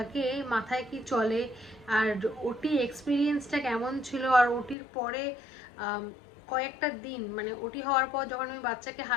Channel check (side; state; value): right; drops out; at 4.8 s